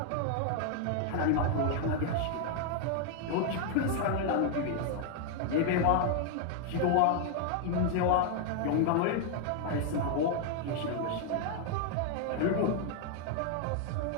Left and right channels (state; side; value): different; both; correlation 0.01